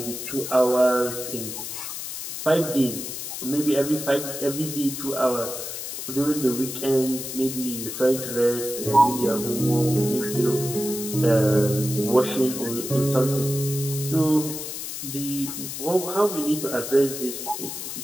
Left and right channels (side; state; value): left; noise; hiss, 7 dB below the sound